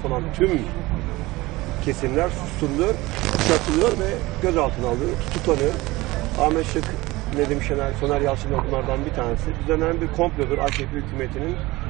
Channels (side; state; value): left; quieter; 20.3 dB